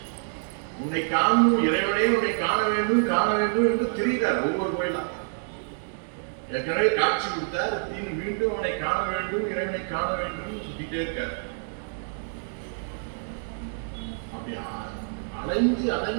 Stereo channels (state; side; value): silent; left; 60 dB below the other